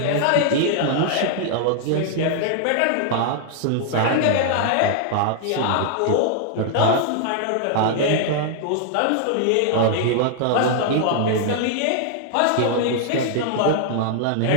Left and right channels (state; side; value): different; both; correlation 0.00